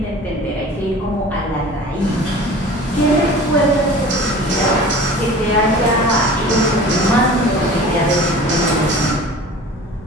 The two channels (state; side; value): normal; both; correlation 0.41